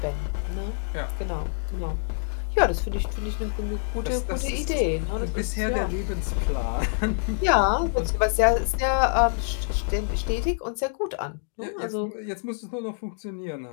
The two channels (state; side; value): silent; right; digital silence